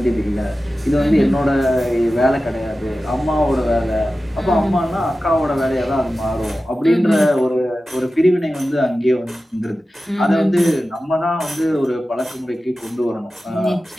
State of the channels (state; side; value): normal; both; correlation 0.94